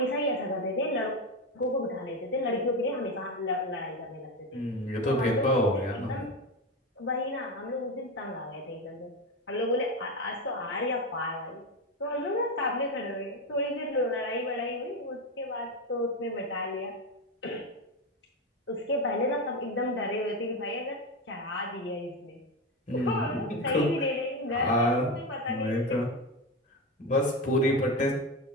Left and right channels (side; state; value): both; normal; correlation 0.16